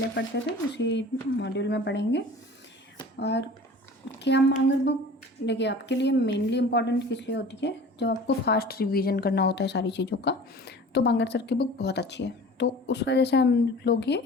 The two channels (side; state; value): both; normal; correlation 0.42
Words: पढ़ते थे उसी मॉड्यूल में पढ़ेंगे। और क्या मांगर बुक देखिए आपके लिए मेनली इम्पॉर्टेंट किस लिए होती है, जब आपको फास्ट रिवीजन करना होता है सारी चीज़ों का, तो बांगर सर की बुक बहुत अच्छी है, तो उस वजह से हम लोग ये